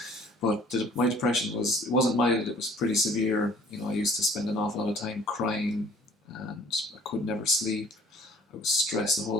But my depression it wasn't mild, it was pretty severe. I used to spend an awful lot of time crying, and I could never sleep. I was stressed the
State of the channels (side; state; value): both; normal; correlation 0.54